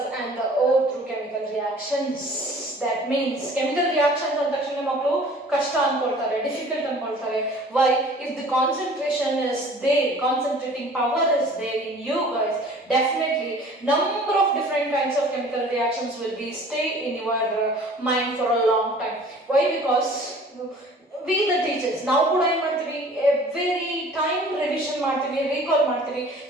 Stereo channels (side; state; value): both; normal; correlation 0.48